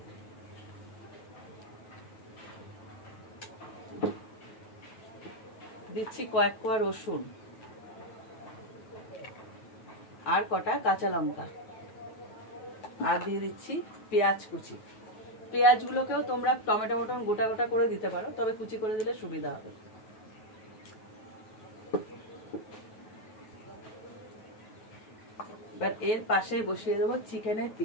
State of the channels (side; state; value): right; late; 9.3 ms